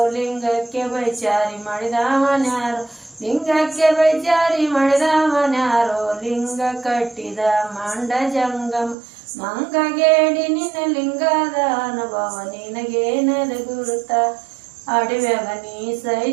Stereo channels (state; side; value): drops out; left; at 9.0 s